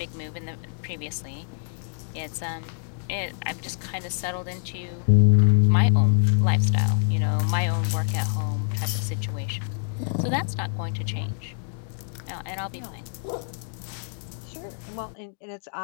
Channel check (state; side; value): silent; right; digital silence